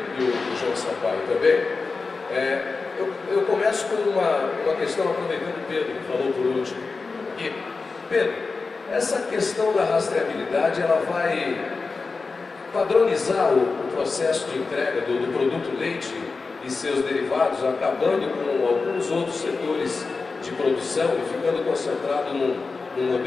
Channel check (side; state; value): right; quieter; 4.2 dB